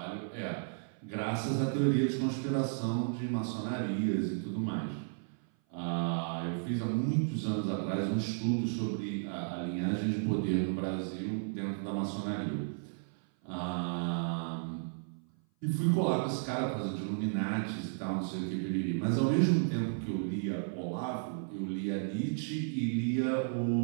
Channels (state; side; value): silent; left; 55 dB below the other